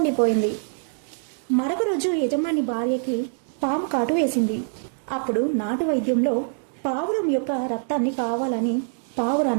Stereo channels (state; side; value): silent; left; digital silence